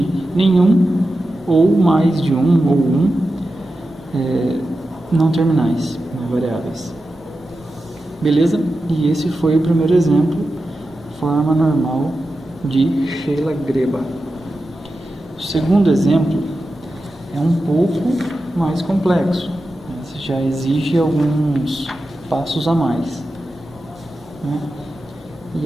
nenhum ou mais de um ou não terminais, variáveis. Beleza? E esse foi o primeiro exemplo, forma normal de Sheyla-Greiba. O segundo exemplo é um pouco mais complexo. Esse já exige alguns passos a mais, né? E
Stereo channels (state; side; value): normal; both; correlation 0.91